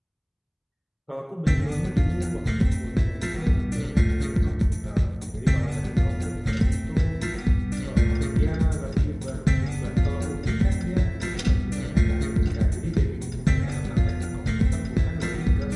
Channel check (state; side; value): identical; both; correlation 1.00